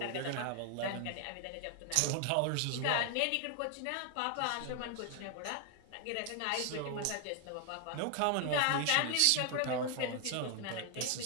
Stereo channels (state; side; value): different; both; correlation 0.00